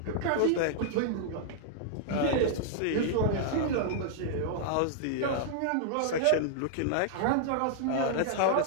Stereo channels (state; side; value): different; both; correlation -0.01